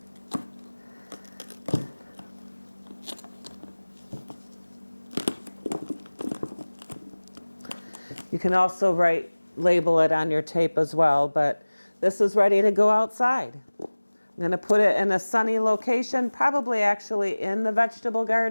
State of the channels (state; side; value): inverted; both; correlation -1.00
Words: You can also label it on your tape as well, but this is ready to go outside. I'm going to put it in a sunny location, probably actually in the vegetable